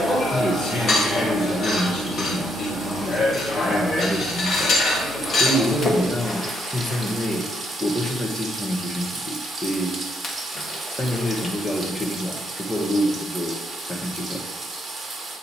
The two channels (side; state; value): both; normal; correlation 0.74